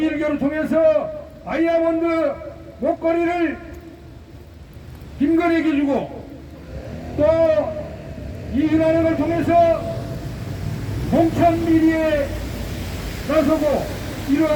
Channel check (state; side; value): identical; both; correlation 1.00